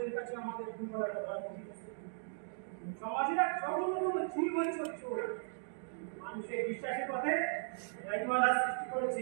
কাছে আমাদের দুর্বলতা ধরা পড়েছে। সমাজের এক জঘন্যতম জীবনচর চোর মানুষের বিশ্বাসের পথে রাইমালা সৃষ্টি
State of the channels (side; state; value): left; silent; digital silence